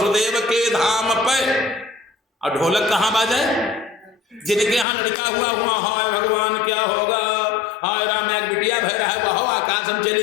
के धाम पे, और ढोलक कहाँ बाजे? जिनके यहाँ लड़का हुआ, हाय भगवान क्या होगा, हाय राम एक बिटिया भय रहा है, वह आकाश हम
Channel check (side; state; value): right; drops out; at 4.9 s